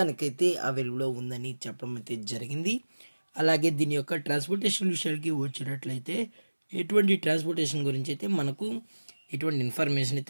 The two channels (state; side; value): inverted; both; correlation -1.00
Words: అవైలబుల్ ఉందని చెప్పడం అయితే జరిగింది. అలాగే దీని యొక్క ట్రాన్స్పోర్టేషన్ విషయానికి వచ్చినట్లయితే ఎటువంటి ట్రాన్స్పోర్టేషన్ గురించి అయితే మనకు ఎటువంటి ఇన్ఫర్మేషన్